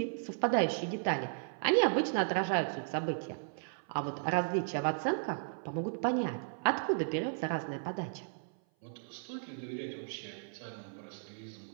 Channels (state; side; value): silent; left; 54 dB below the other